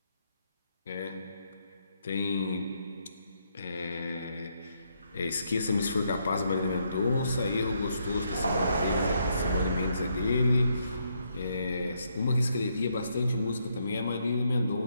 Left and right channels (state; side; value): inverted; both; correlation -0.76